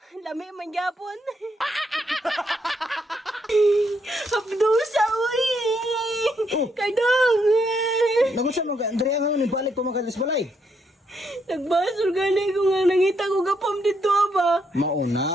Lami man gyapon. Hapdusa uy. Cardong. Nagusa mo diri nga ni balik ko makalis balay. Nagbasol gani ko nga nangita ko gapam dito ba.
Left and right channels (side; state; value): both; normal; correlation 0.76